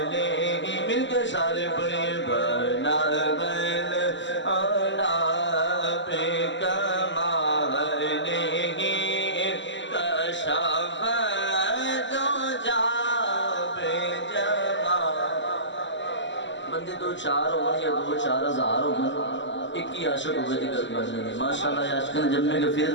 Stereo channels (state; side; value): late; right; 0.54 ms